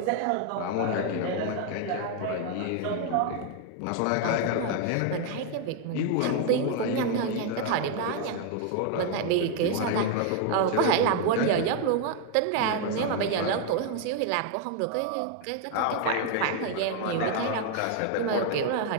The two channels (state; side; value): different; both; correlation 0.01